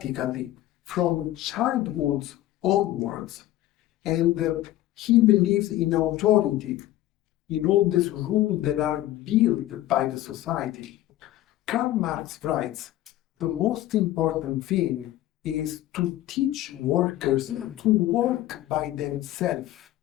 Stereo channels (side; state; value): right; quieter; 14.7 dB